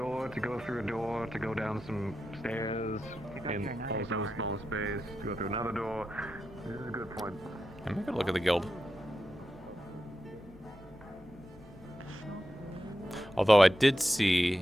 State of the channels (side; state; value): both; normal; correlation 0.89